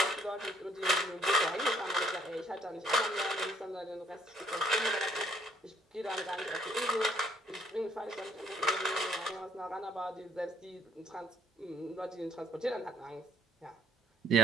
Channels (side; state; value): both; normal; correlation 0.65